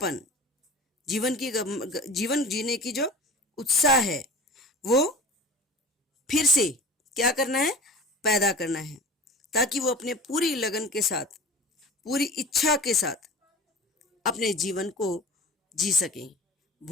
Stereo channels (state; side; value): normal; both; correlation 0.38